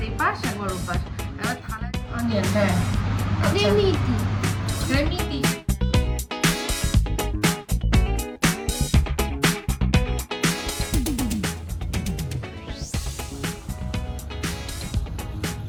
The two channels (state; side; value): identical; both; correlation 1.00